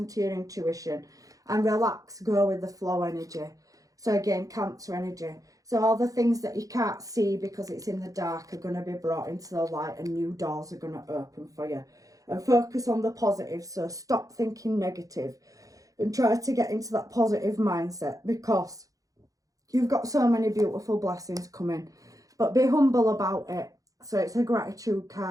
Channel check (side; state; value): left; late; 0.17 ms